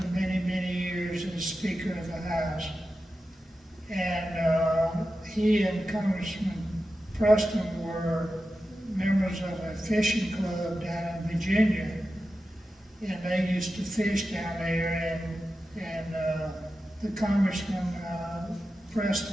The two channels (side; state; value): both; normal; correlation 0.92